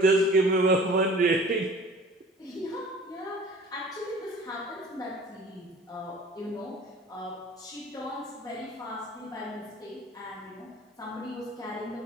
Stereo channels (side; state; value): both; normal; correlation 0.46